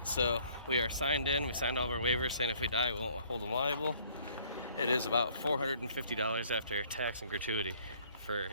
so we are signed in. We signed all of our waivers saying if we die, we won't hold them liable. It is about $450 after tax and gratuity for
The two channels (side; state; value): both; inverted; correlation -0.59